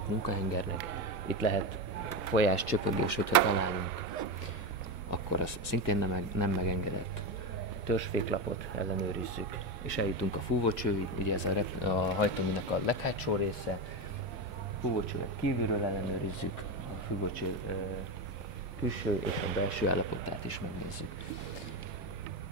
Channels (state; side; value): normal; both; correlation 0.16